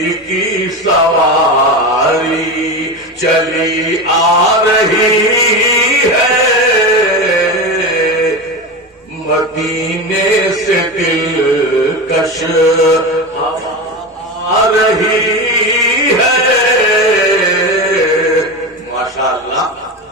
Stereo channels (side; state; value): both; normal; correlation 0.22